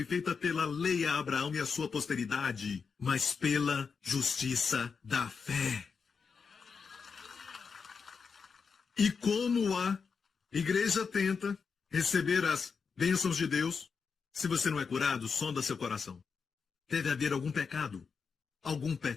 feita pela lei a Abraão e a sua posteridade, mas pela justiça da fé. E como a igreja tenta receber as bênçãos de Deus, se você não é curado, sonda seu coração. Deve haver algum pecado. Algum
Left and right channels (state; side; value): quieter; right; 5.6 dB